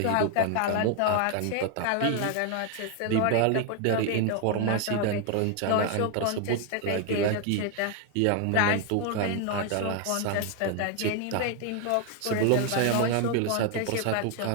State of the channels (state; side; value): different; both; correlation 0.01